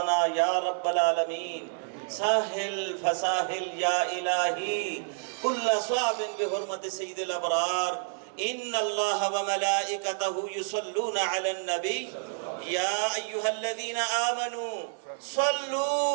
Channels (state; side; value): silent; left; 59 dB below the other